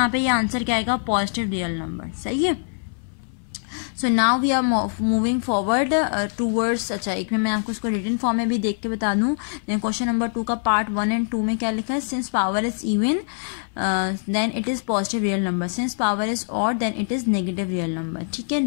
पे ये आंसर क्या आएगा, पॉजिटिव रियल नंबर, सही है। So now we are moving forward towards, अच्छा एक में मैं आपको उसको रिटन फॉर्म में भी देख के बता दूं। क्वेश्चन नंबर 2 का पार्ट 1 एंड 2 में क्या लिखा है, since power is even then it is positive real number, since power is odd then it is negative real number, ठीक है।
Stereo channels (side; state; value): right; silent; 60 dB below the other